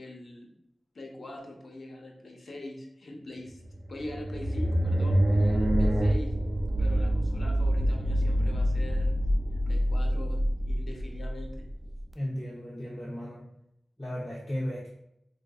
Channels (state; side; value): normal; both; correlation 0.97